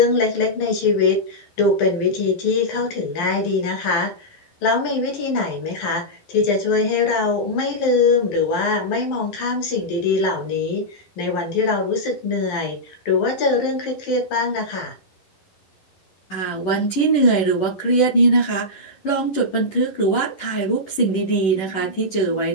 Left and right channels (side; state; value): right; late; 11 ms